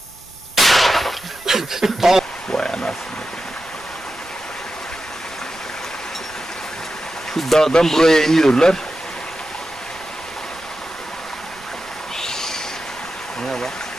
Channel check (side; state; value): right; noise; rumble, 25 dB below the sound